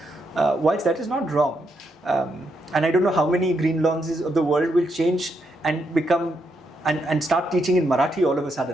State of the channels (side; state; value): both; normal; correlation 0.79